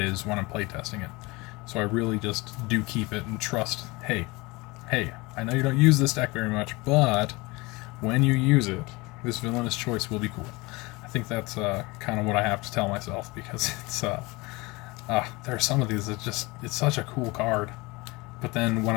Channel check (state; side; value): quieter; right; 23.8 dB